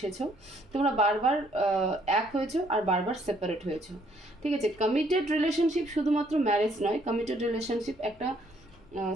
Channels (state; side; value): normal; both; correlation 0.66